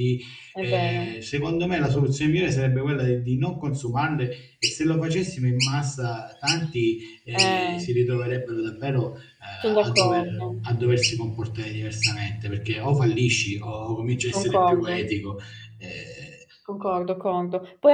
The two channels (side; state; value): both; identical; correlation 1.00